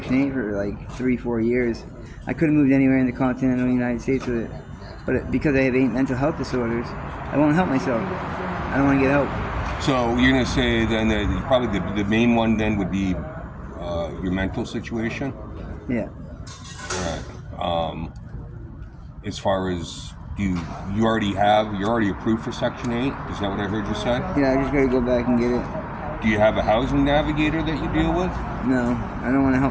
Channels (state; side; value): identical; both; correlation 1.00